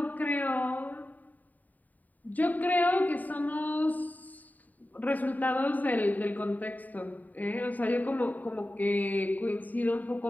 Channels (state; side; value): late; right; 0.081 ms